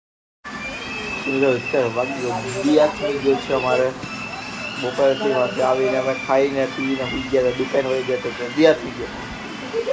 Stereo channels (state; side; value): identical; both; correlation 1.00